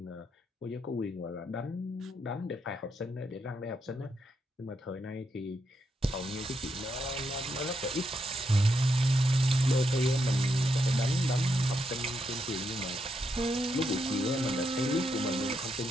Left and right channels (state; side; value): normal; both; correlation 0.81